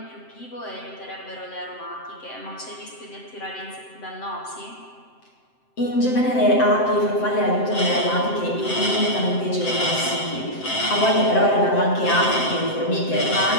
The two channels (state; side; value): late; right; 7.7 ms